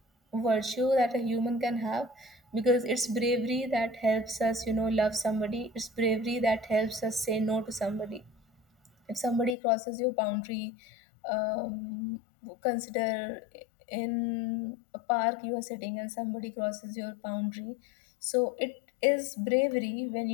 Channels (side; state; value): right; drops out; at 9.6 s